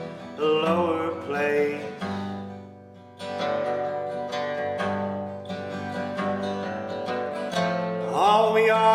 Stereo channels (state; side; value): identical; both; correlation 1.00